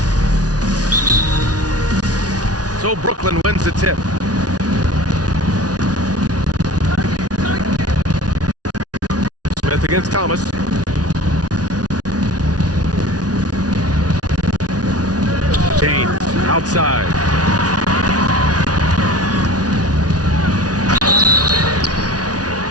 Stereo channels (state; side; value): late; left; 0.68 ms